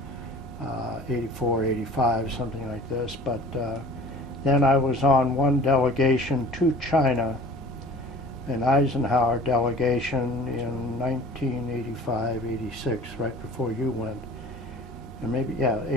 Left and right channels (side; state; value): both; normal; correlation 0.45